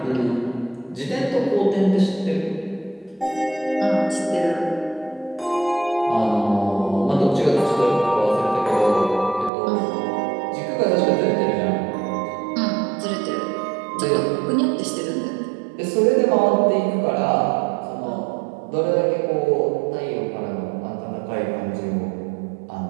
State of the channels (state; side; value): drops out; left; at 9.5 s